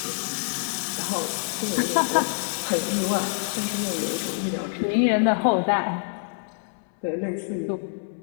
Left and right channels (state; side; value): silent; right; 60 dB below the other